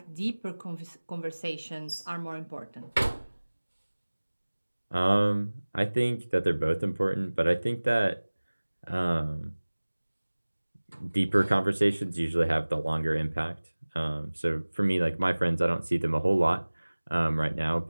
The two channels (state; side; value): inverted; both; correlation -1.00